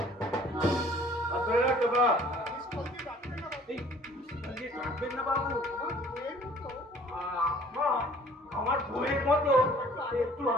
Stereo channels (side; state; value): both; normal; correlation 0.53